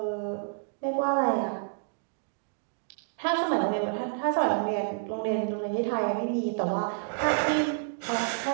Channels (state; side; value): silent; left; digital silence